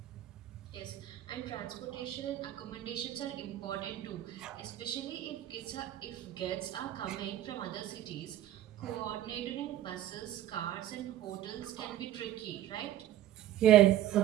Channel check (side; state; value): left; quieter; 12.6 dB